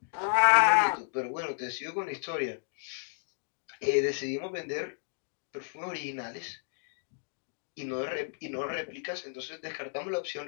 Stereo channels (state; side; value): silent; right; digital silence